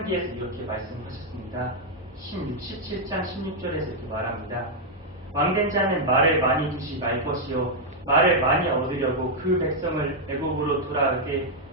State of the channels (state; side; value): normal; both; correlation -0.02